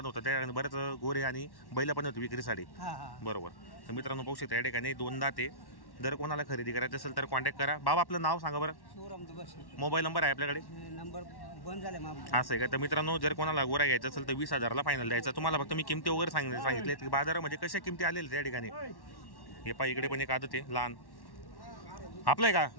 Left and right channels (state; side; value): late; right; 1.1 ms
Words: होतं, त्या ठिकाणी बरेच गोरे आणि बैल पण होती विक्रीसाठी, बरोबर। तर मित्रांनो पाहू शकता या ठिकाणी 2 दात आहे। जर कोणाला खरेदी करायचं असेल तर कॉन्टॅक्ट करा। बाबा आपलं नाव सांगा बरं। मोबाईल नंबर आहे आपल्याकडे? नंबर बंद झाले असं आहे का? तर मित्रांनो, जर कोणाला गोरा घ्यायचा असेल तर 20,000 फायनल द्यायचा। तुम्हाला फक्त मी किमती वगैरे सांगितले की बाजारामध्ये कशा किमती आलेल्या त्या ठिकाणी। हे पहा, इकडे पण एक आदत आहे लहान, आपलं आहे का?